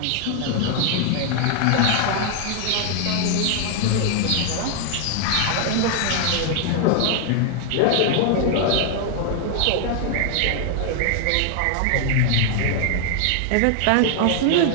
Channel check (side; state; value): both; different; correlation 0.00